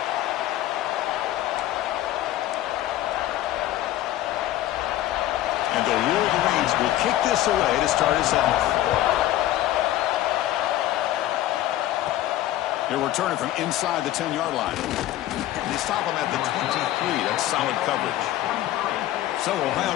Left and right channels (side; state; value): right; quieter; 14.1 dB